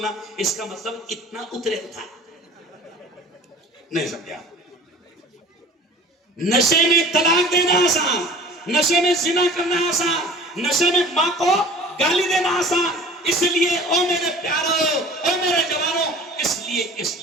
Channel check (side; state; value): both; normal; correlation 0.44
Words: اس کا مطلب اتنا اترے تھا. نہیں سمجھا. نشے میں طلاق دینا آسان، نشے میں زنا کرنا آسان، نشے میں ماں کو گالی دینا آسان. اس لیے او میرے پیارو، او میرے لیے